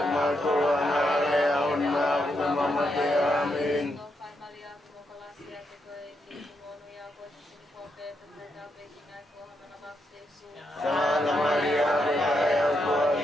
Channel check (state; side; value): normal; both; correlation 0.81